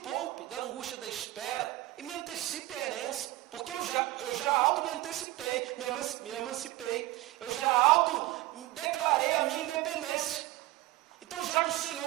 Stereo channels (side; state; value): left; quieter; 17.3 dB